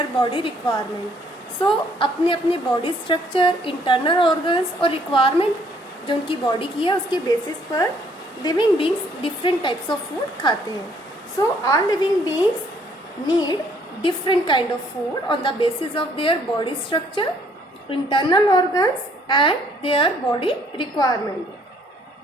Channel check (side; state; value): both; normal; correlation 0.64